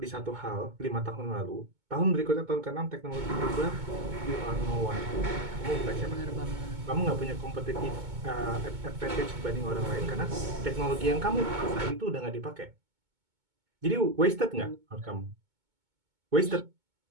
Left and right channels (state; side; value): late; left; 2.2 ms